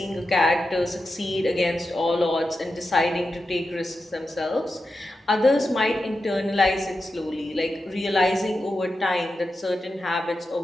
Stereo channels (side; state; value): both; normal; correlation 0.90